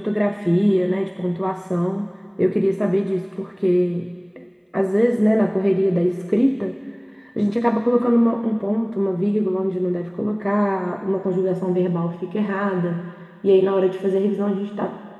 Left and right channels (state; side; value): identical; both; correlation 1.00